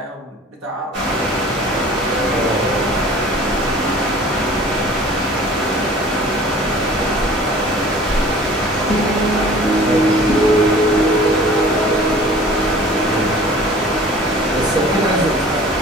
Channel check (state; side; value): normal; both; correlation 0.46